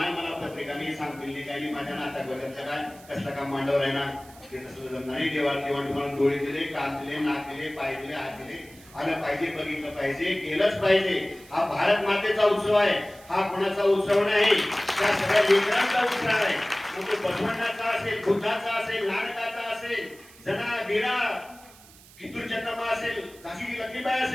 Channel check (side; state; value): right; noise; hiss, 23 dB below the sound